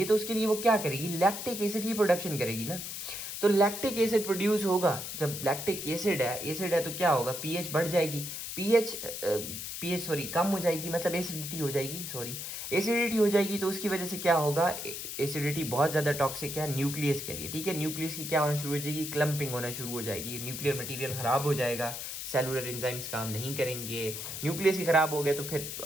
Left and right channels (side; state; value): left; noise; hiss, 6 dB below the sound